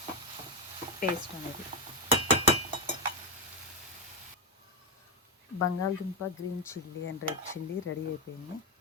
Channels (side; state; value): both; normal; correlation 0.10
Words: పేస్ట్ అనేది బంగాళదుంప, green chilli and red chilli ready అయిపోయింది.